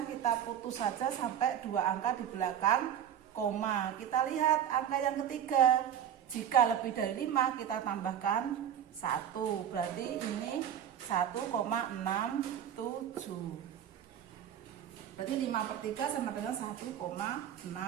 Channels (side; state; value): left; quieter; 9.7 dB